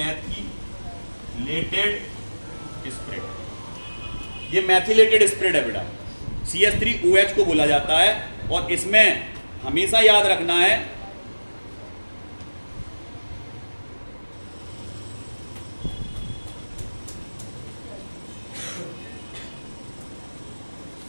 स्पिरिट। ये मैथिलेटेड स्पिरिट है बेटा, CH3OH को बोला जाता है। और इसमें हमेशा याद रखना है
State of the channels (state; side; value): inverted; both; correlation -1.00